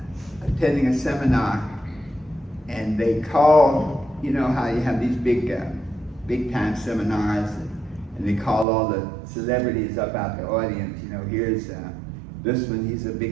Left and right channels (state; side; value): drops out; left; at 8.7 s